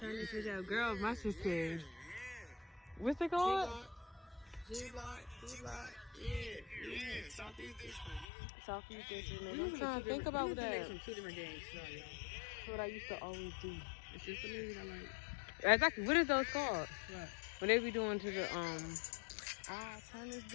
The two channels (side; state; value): right; drops out; at 8.2 s